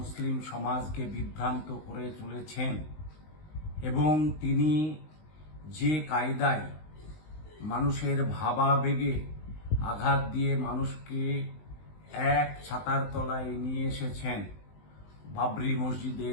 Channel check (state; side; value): late; right; 19 ms